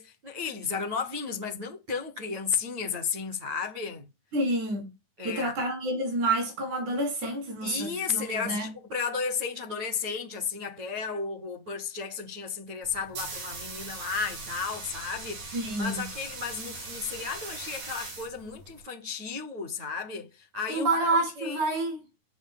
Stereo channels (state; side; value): late; left; 9.5 ms